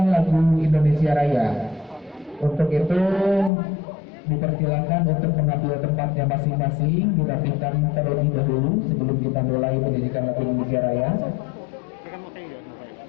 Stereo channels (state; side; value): drops out; right; at 3.5 s